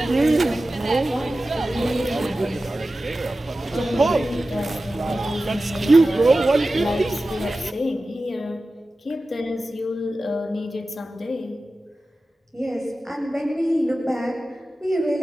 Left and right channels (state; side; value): normal; both; correlation 0.95